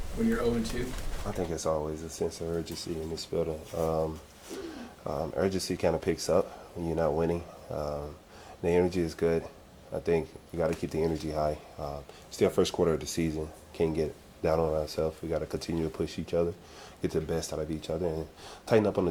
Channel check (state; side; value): identical; both; correlation 1.00